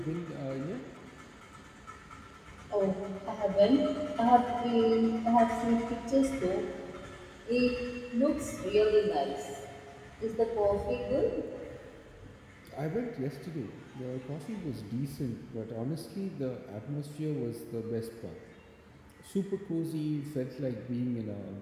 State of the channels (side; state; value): both; identical; correlation 1.00